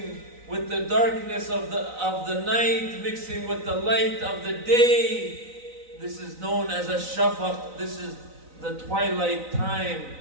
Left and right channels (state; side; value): late; left; 3.9 ms